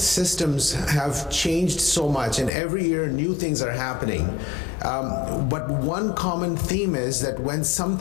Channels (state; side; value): drops out; right; at 2.5 s